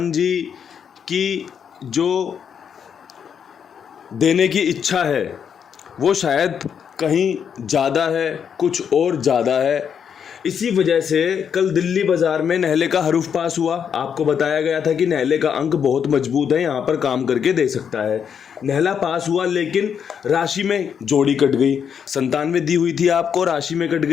जी की जो देने की इच्छा है वो शायद कहीं ज़्यादा है, कुछ और ज़्यादा है। इसी वजह से कल दिल्ली बाज़ार में नेहले का हरूफ पास हुआ। आपको बताया गया था कि नेहले का अंक बहुत मजबूत है, यहाँ पर काम करके दे सकता है। नेहला पास हुआ, लेकिन राशि में जोड़ी कट गई। 97 दी हुई थी आपको, राशि में कट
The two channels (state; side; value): quieter; right; 7.6 dB